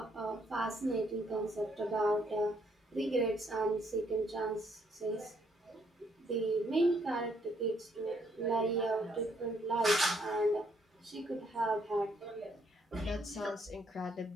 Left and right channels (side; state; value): both; normal; correlation 0.70